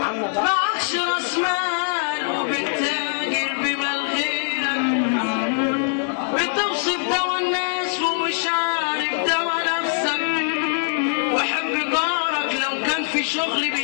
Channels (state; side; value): silent; right; 60 dB below the other